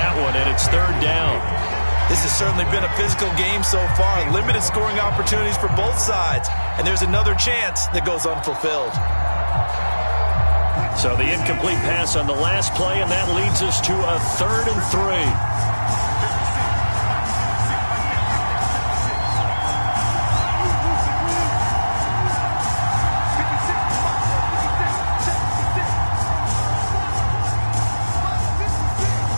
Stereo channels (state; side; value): inverted; both; correlation -1.00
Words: one, and it's third down. This has certainly been a physical game so far. Limited scoring opportunities for both sides. And there's another chance that goes unfulfilled. So the incomplete pass on the last play, and that leads us to a 3rd and 3.